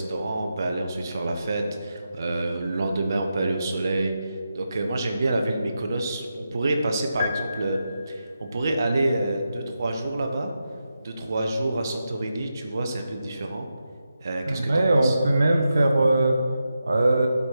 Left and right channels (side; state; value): both; inverted; correlation -0.88